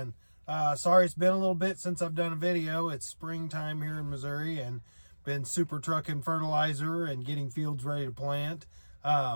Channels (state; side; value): inverted; both; correlation -1.00